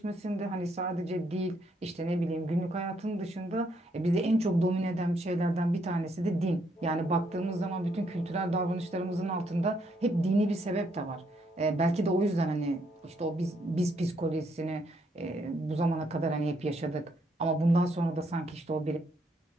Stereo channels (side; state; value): both; normal; correlation 0.73